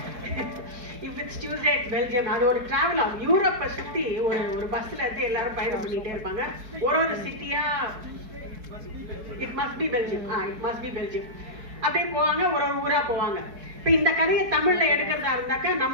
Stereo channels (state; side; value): late; left; 4.6 ms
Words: if it's Tuesday it's Belgium. அது ஒரு டிராவல் ஆகும். யூரோப்பை சுற்றி ஒரு பஸ்ஸில் இருந்து எல்லாரும் பயணம் பண்ணிகிட்டே இருப்பாங்க. ஒரு சிட்டியாக it must be Belgium, it must be Belgium அப்படியே போவாங்க. ஒரு ஊராக போவாங்க. இப்போ இந்த கதையை தமிழில் எடுக்கிறதா இருந்தாக்கா